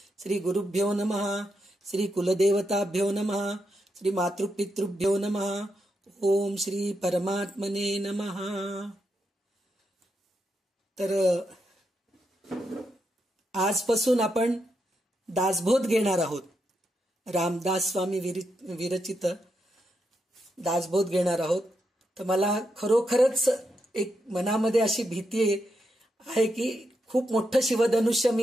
श्री गुरुभ्यो नमः, श्री कुलदेवताभ्यो नमः, श्री मातृपितृभ्यो नमः. ओम श्री परमात्मने नमः. तर आजपासून आपण दासबोध घेणार आहोत. रामदास स्वामी विरचित दासबोध घेणार आहोत. तर मला खरोखरच एक मनामध्ये अशी भीती आहे की खूप मोठं शिवधनुष्य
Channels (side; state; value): both; normal; correlation 0.83